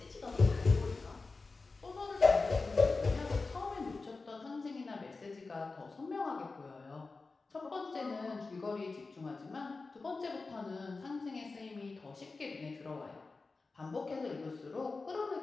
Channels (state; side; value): quieter; right; 3.9 dB